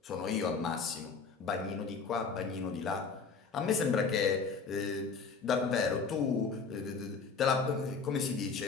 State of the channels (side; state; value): right; quieter; 5.0 dB